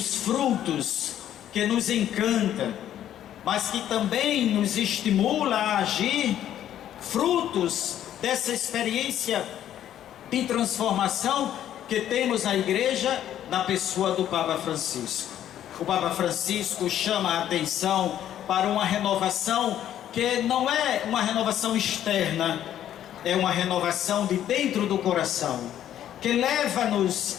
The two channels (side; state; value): right; quieter; 11.1 dB